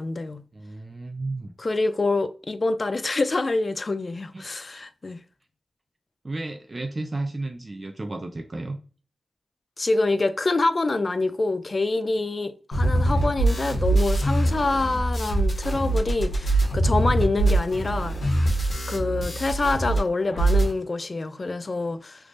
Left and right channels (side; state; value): both; normal; correlation 0.91